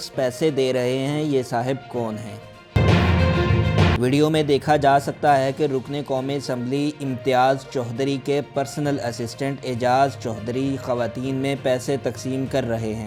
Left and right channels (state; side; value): identical; both; correlation 1.00